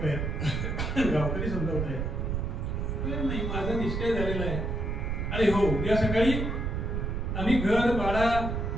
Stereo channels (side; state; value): right; noise; rumble, 1 dB below the sound